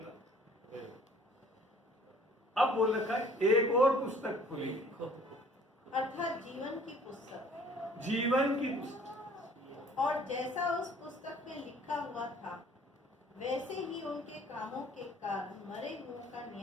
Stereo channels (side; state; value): both; normal; correlation 0.54